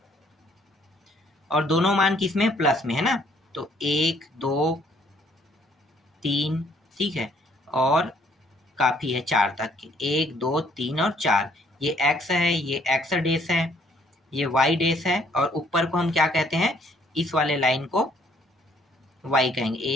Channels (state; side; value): normal; both; correlation 0.64